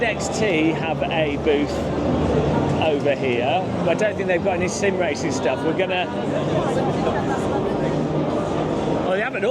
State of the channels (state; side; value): identical; both; correlation 1.00